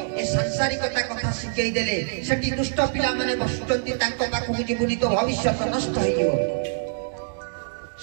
ए सांसारिकता कथा सिखै देले सेठी दुष्ट पिला माने बसुचंती तांको पाखु जीवुनी तो भविष्य नष्ट होई जीवो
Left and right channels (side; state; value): left; silent; digital silence